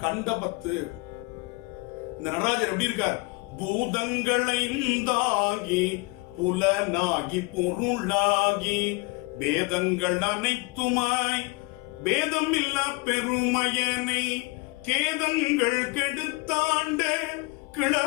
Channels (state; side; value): quieter; right; 27.1 dB